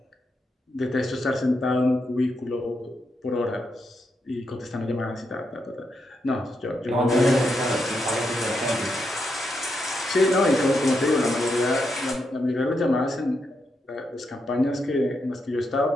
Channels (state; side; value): normal; both; correlation 0.82